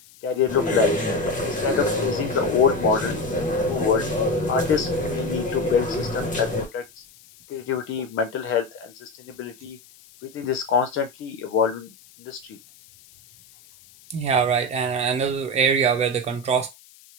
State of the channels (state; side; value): noise; left; hiss, 25 dB below the sound